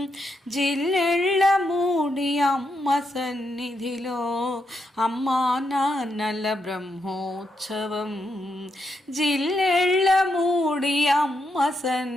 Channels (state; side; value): normal; both; correlation 0.81